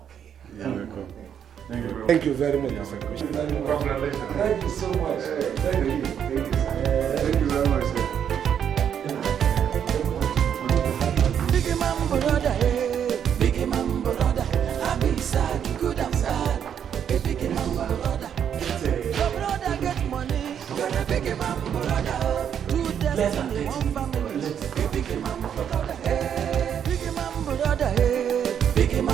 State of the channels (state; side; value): quieter; left; 8.6 dB